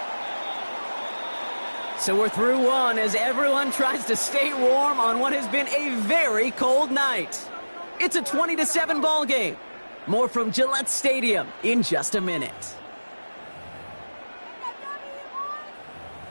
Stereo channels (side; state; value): both; inverted; correlation -1.00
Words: So we're through one as everyone tries to stay warm on what has been a very cold night. It's a 20-7 ball game. More from Gillette Stadium in just a minute.